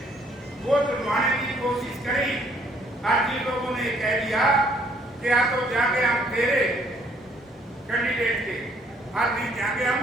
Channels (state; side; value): normal; both; correlation 0.64